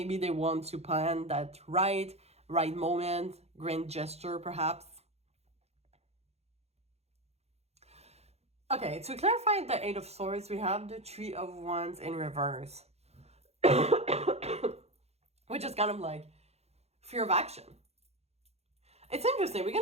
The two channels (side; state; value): left; late; 0.31 ms